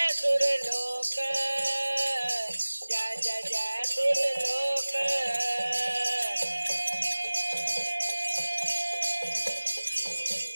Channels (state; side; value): inverted; both; correlation -1.00